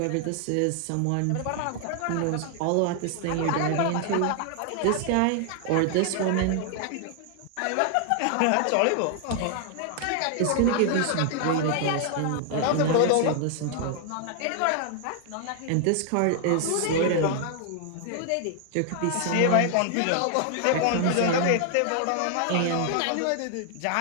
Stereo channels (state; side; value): different; both; correlation 0.00